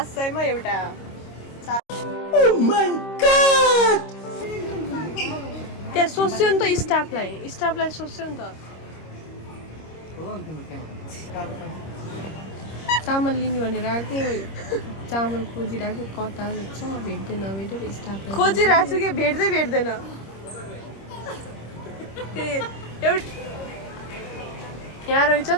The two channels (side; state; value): right; late; 26 ms